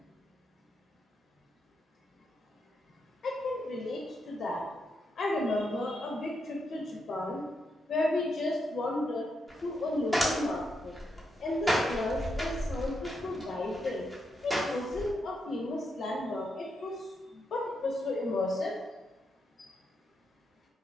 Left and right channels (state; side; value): normal; both; correlation 0.82